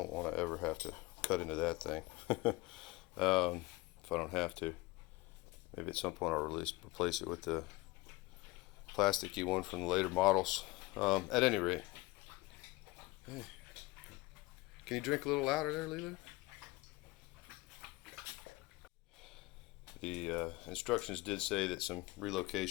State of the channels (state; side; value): quieter; right; 21.6 dB